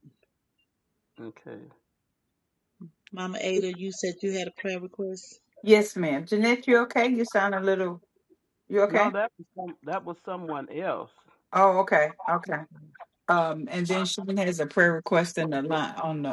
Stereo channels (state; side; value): identical; both; correlation 1.00